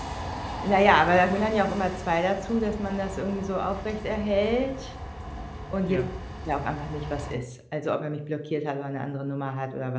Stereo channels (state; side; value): identical; both; correlation 1.00